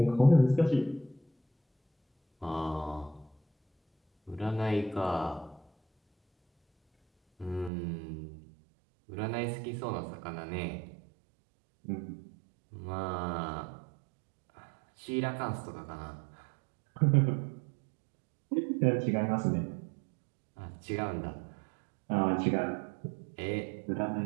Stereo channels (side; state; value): left; drops out; at 7.7 s